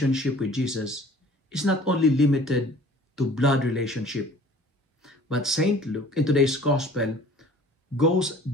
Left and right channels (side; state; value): both; normal; correlation 0.49